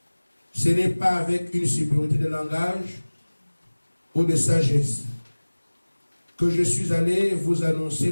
ce n'est pas avec une supériorité de langage ou de sagesse que je suis allé vous annoncer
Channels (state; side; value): inverted; both; correlation -1.00